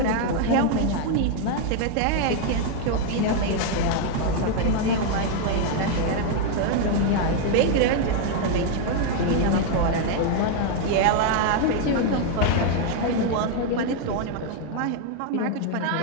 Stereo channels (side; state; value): both; different; correlation 0.00